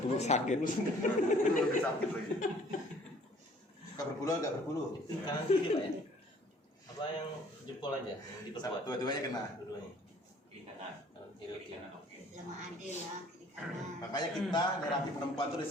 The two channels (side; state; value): both; normal; correlation 0.56